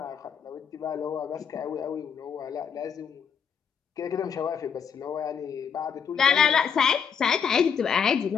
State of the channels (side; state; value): right; quieter; 7.0 dB